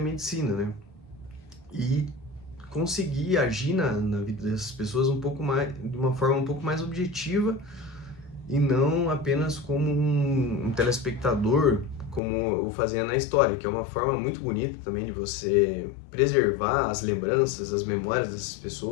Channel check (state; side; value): drops out; right; at 12.2 s